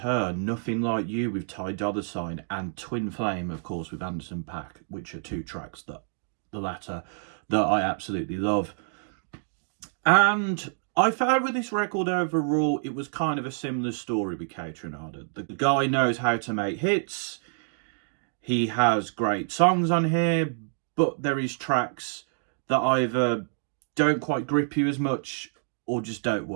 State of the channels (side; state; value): left; silent; digital silence